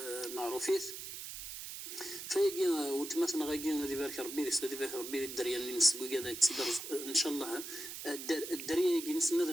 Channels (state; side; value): noise; right; hiss, 8 dB below the sound